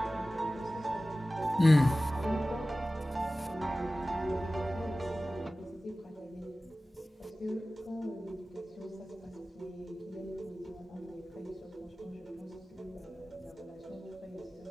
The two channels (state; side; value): normal; both; correlation 0.96